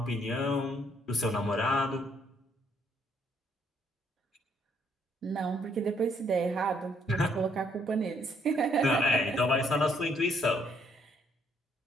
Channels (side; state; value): both; normal; correlation 0.68